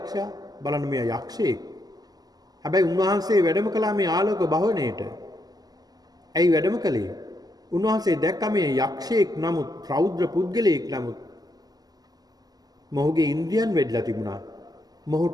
බලන්න මේ යක්ෂයෙක්. හැබැයි උන්වහන්සේ වැඩම කළා මේ ආලෝක භවණයට. ඇයි වැඩම කළේ? උන්වහන්සේ දැක්ක මේ යක්ෂයෙක් නමුත් රෞද්‍ර පුද්ගලයෙක් නමුත් මොහුගේ ඉන්ද්‍රියන් වැඩිලා තිබුණා.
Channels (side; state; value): left; late; 0.19 ms